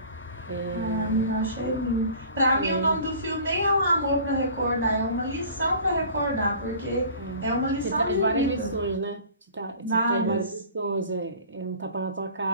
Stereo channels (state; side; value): inverted; both; correlation -0.44